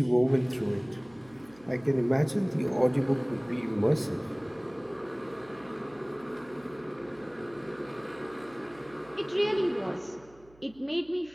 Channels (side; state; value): right; noise; hum, 26 dB below the sound